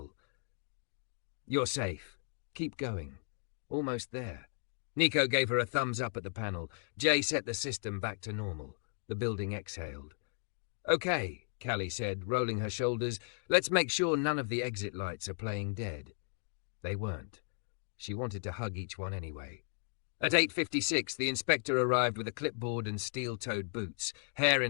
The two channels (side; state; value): right; silent; 54 dB below the other